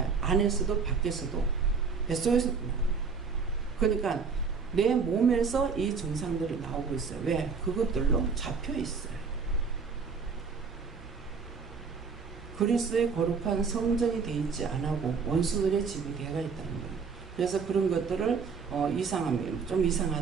안에서도 밖에서도 뱃속에서도 나와요. 그러니까 내 몸에서 이 증상들이 나오고 있어요. 왜? 그것들로 잡혀 있어요. 그리스도의 거룩한 성전이 돼 있지 않고 원수들의 집에 개가 있다는 거예요. 그래서 그런 것들을 이상하면 좀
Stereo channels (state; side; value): quieter; left; 5.3 dB